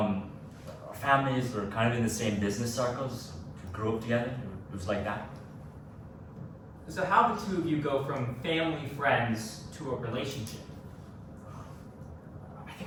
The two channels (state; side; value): identical; both; correlation 1.00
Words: families were kind of in the same business circles. We grew up together. It was like that. So how did the two of you go from family friends to a relationship? I